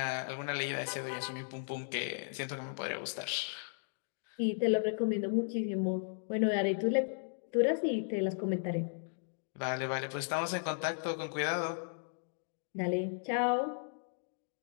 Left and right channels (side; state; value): right; silent; digital silence